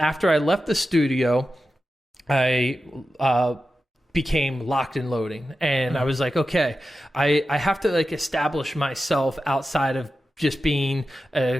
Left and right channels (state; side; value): normal; both; correlation 0.92